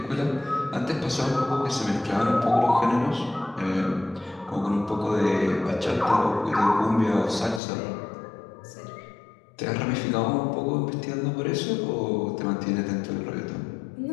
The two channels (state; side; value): drops out; right; at 7.6 s